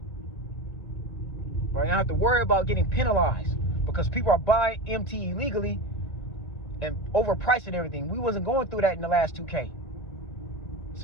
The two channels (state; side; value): late; right; 1.7 ms